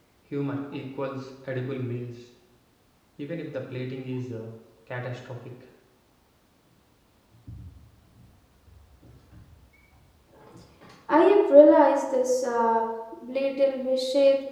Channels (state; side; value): identical; both; correlation 1.00